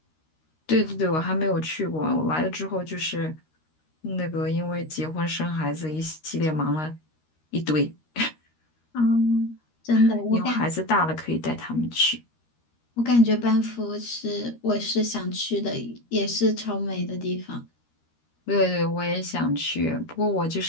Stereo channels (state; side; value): late; right; 13 ms